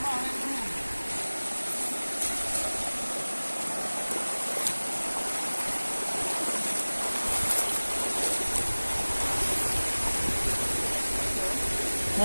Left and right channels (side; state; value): both; inverted; correlation -1.00